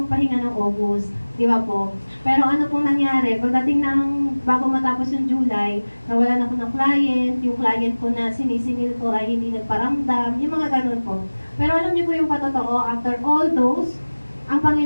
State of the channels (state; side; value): inverted; both; correlation -1.00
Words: magpahinga ng August, di ba po? Pero ano pong nangyari, pagdating ng bago matapos yung July, nawalan ako ng client, yung client ko na sinisingil ko ay hindi nagparamdam, yung mga ganun po. Pero alam niyo po yung patotoo, after all those, ang